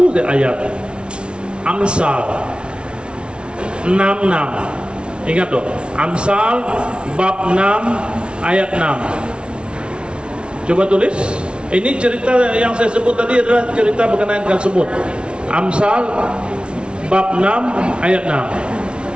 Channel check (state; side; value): late; left; 0.057 ms